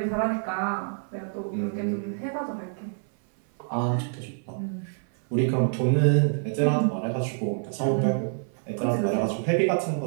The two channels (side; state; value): left; silent; 58 dB below the other